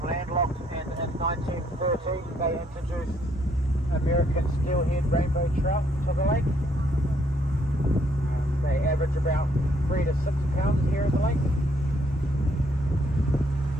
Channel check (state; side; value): normal; both; correlation 0.69